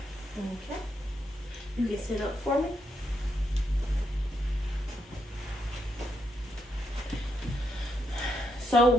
Okay. You can sit up for me. So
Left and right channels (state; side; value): normal; both; correlation 0.80